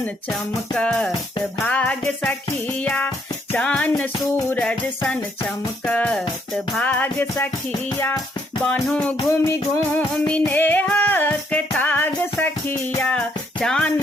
चमकत भाग सखिया चान सूरज सन चमकत भाग सखिया बान्हो घूमि घूमि नेहक ताग सखिया चान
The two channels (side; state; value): both; normal; correlation 0.71